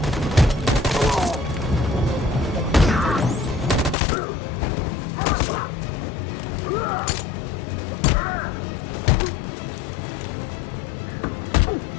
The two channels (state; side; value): drops out; right; at 4.0 s